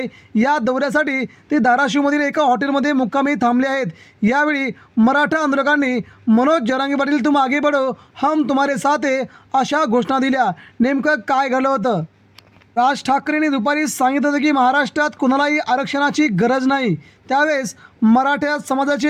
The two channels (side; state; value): both; identical; correlation 1.00